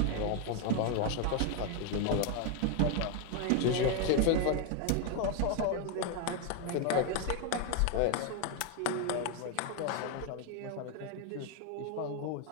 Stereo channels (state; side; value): different; both; correlation 0.01